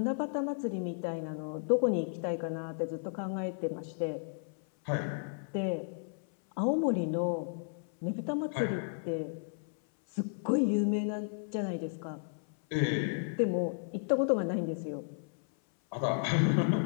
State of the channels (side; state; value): right; silent; 56 dB below the other